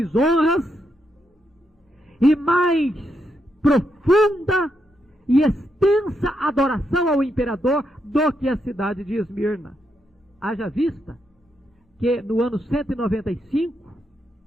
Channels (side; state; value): both; normal; correlation 0.81